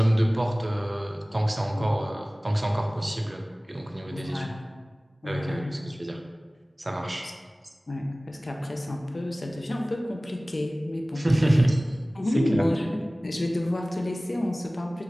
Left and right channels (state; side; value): normal; both; correlation 0.98